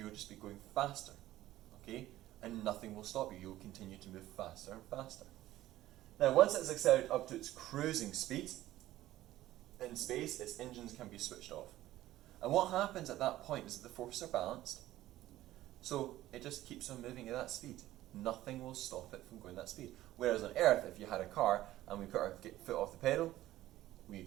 just be going faster. Okay? And nothing will stop you. You'll continue to move faster and faster. Now, once it's accelerated up to its cruising speed in space, its engines can be switched off. And what happens at that point is that the forces are balanced, so it just keeps on moving at that speed. Nothing will stop it from going that speed. Whereas on Earth, if you had a car and we put our foot off the pedal, we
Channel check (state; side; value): quieter; left; 15.0 dB